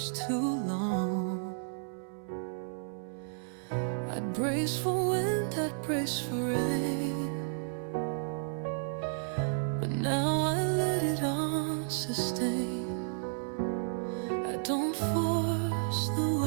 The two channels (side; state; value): left; silent; 56 dB below the other